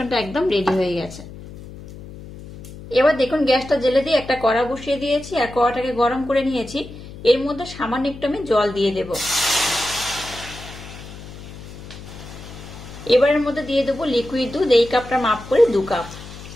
একদম রেডি হয়ে গেছে। এবার দেখুন গ্যাসটা জেলে দিয়ে একটা কড়া বসিয়ে দিয়েছি আর কড়াটাকে গরম করে নিয়েছি। এর মধ্যে সামান্য একটু আমি জল দিয়ে দেব। এবার এর মধ্যে দিয়ে দেবো লিকুইড দুধ। এই কাপটা মাপ করে 2 কাপ।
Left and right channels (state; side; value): noise; left; hum, 15 dB below the sound